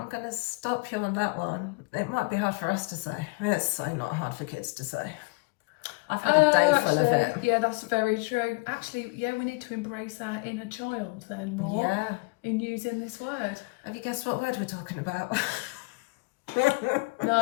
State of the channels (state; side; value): quieter; right; 27.2 dB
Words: stop you on that one. It might be hard for us to say. It's so not hard for kids to say. I've had a day full of it. Yeah, that's very true. Actually, yeah, we need to embrace our inner child then more in using this word. Have you guessed what word we're talking about?